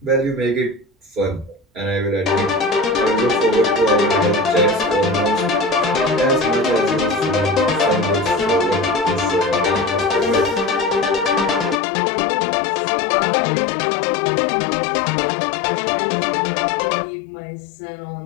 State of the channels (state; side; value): drops out; right; at 11.8 s